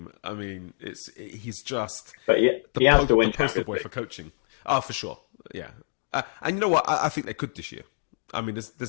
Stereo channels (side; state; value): right; silent; digital silence